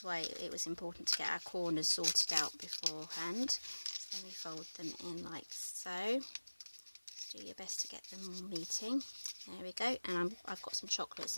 why it was important to get our corners sorted out beforehand. So then we fold them in like so. Do your best to get them meeting. There we go. And I've got some chocolates.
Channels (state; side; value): inverted; both; correlation -1.00